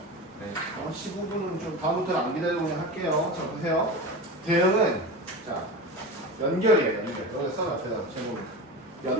네. 15분은 좀 다음부터는 안 기다리고 그냥 할게요. 자, 보세요. 대응은 자 연결이에요. 연결. 여기 써놔. 앞에다 제목.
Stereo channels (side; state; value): both; normal; correlation 0.27